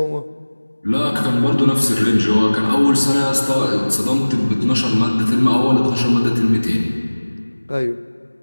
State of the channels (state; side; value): inverted; both; correlation -1.00